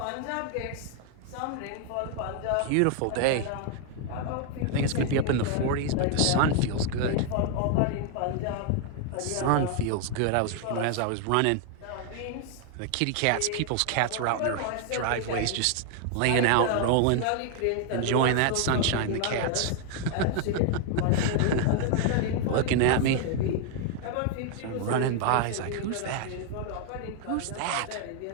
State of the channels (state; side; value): different; both; correlation 0.00